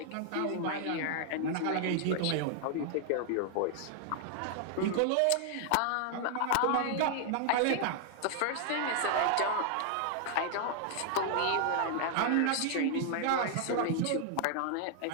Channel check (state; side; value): different; both; correlation 0.00